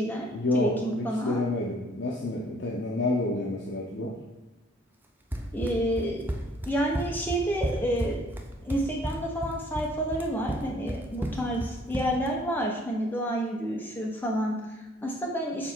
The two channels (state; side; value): normal; both; correlation 0.60